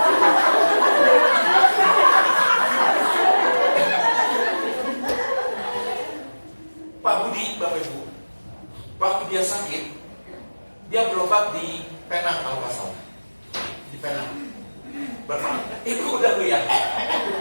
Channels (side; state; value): both; inverted; correlation -1.00